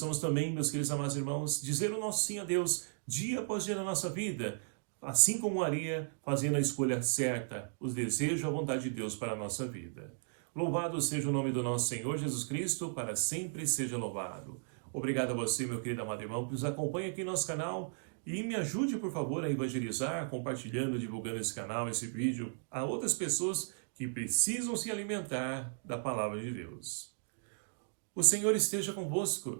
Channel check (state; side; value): silent; left; digital silence